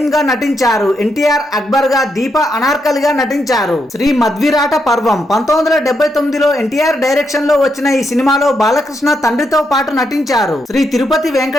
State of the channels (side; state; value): both; normal; correlation 0.81